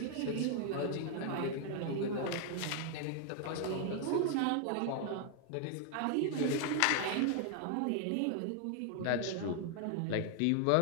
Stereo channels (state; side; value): different; both; correlation 0.00